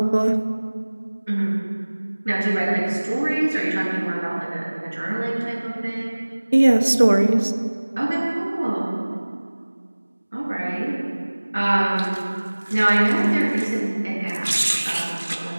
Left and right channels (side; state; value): both; inverted; correlation -1.00